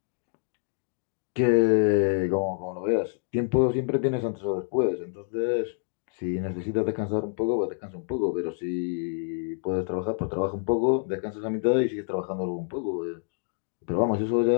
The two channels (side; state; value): right; silent; 60 dB below the other